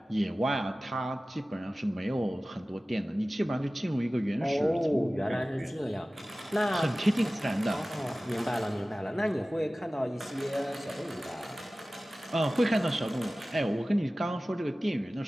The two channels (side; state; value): both; normal; correlation 0.97